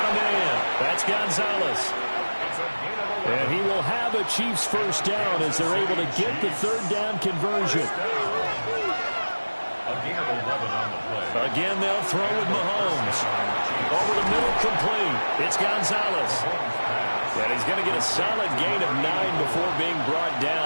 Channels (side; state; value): both; inverted; correlation -1.00